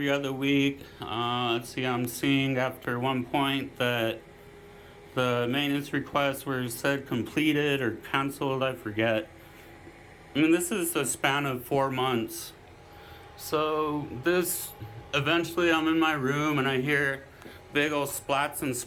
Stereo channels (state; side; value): identical; both; correlation 1.00